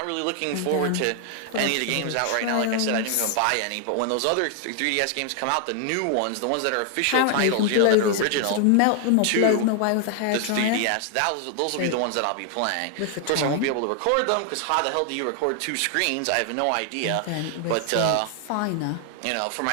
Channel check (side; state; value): both; different; correlation 0.00